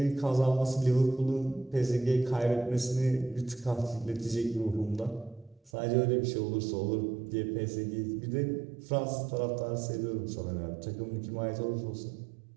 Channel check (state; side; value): drops out; left; at 5.7 s